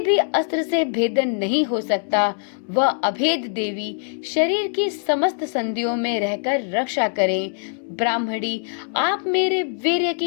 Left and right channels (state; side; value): silent; right; digital silence